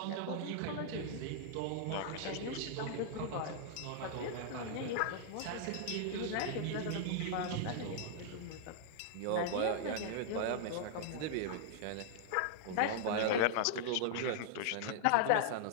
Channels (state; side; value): different; both; correlation -0.01